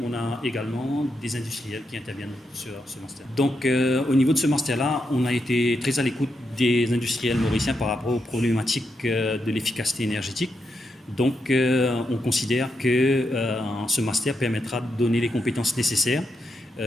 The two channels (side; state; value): both; normal; correlation 0.83